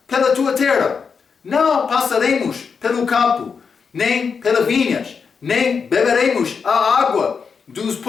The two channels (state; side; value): quieter; right; 5.8 dB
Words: pela tua terra. Não passaremos pelo campo, nem pelas vinhas, nem beberemos a água dos